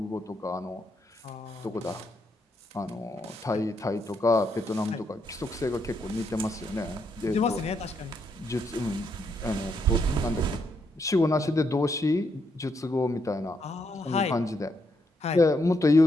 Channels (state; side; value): normal; both; correlation 0.77